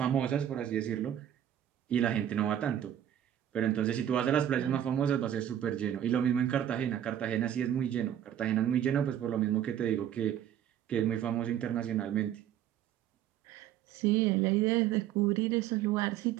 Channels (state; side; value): quieter; left; 10.7 dB